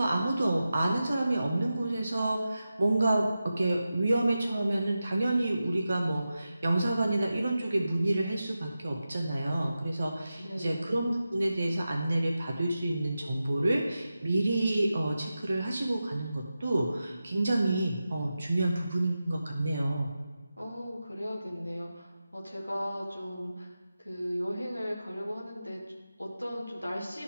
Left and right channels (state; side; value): inverted; both; correlation -0.92